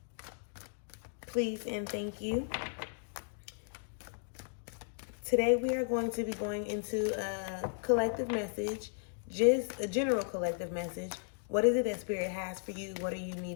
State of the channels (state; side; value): silent; right; digital silence